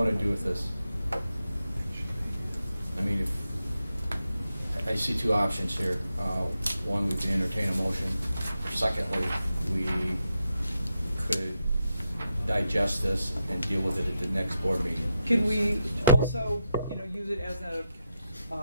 to do with this? I mean, if I see two options here. One, we can entertain a motion. Secondly, we could digest this and deal with it at the next board meeting. Can we also, use it as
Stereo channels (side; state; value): both; inverted; correlation -0.86